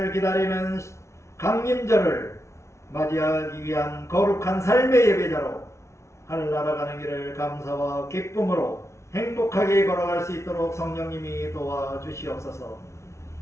기다리는 강림절을 맞이하기 위한 거룩한 삶의 예배자로 하늘나라 가는 길을 감사와 기쁨으로 행복하게 걸어갈 수 있도록 성령님이 도와주시옵소서.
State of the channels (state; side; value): late; right; 0.13 ms